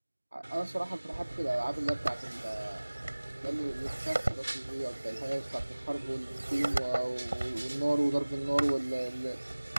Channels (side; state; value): both; inverted; correlation -1.00